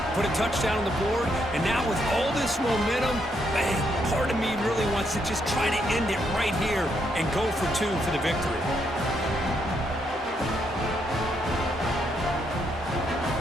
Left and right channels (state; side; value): normal; both; correlation 0.76